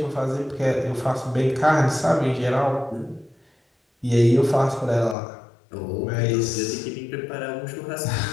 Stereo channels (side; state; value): right; drops out; at 5.2 s